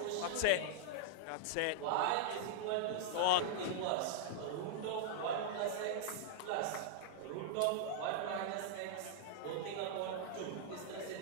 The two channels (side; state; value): both; different; correlation -0.02